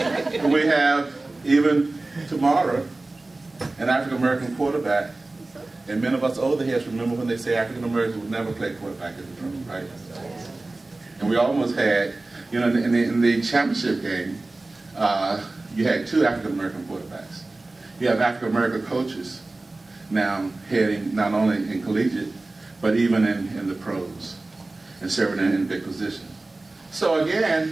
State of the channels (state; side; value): quieter; left; 3.1 dB